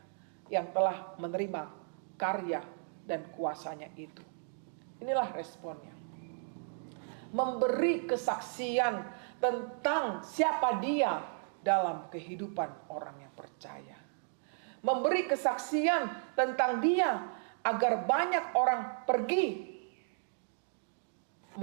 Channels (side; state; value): left; silent; 55 dB below the other